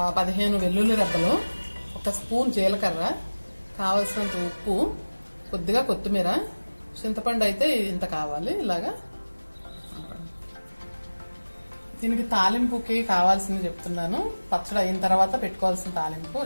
15 వెల్లుల్లి రెబ్బలు, 1 స్పూన్ జీలకర్ర, కావలసినంత ఉప్పు, కొద్దిగా కొత్తిమీర, చింతపండు అయితే ఇంత కావాలి. ఇలాగా దీనికి తాలింపుకి కావాల్సింది చెప్తున్నాను. పచ్చడి అయిన తర్వాత పెట్టుకోవాల్సిన తాలింపు:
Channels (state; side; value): inverted; both; correlation -1.00